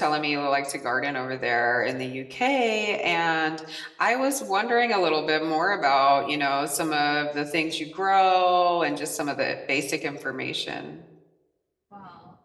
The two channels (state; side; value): identical; both; correlation 1.00